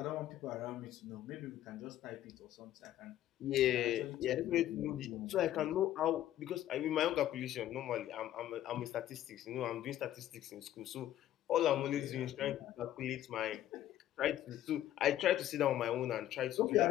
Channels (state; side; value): quieter; right; 12.7 dB